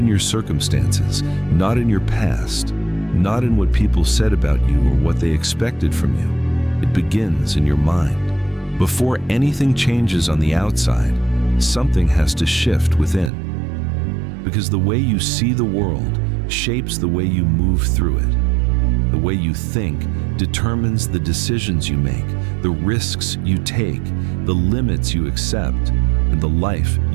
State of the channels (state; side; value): drops out; left; at 13.3 s